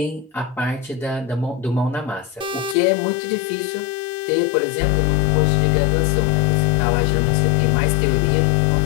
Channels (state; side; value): drops out; right; at 2.8 s